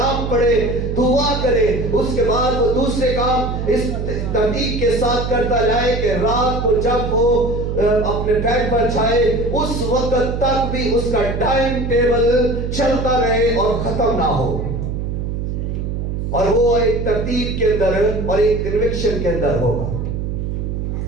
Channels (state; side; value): noise; right; hum, 3 dB below the sound